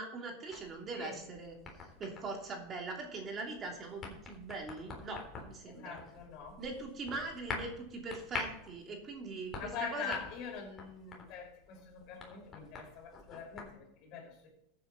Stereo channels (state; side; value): normal; both; correlation 0.31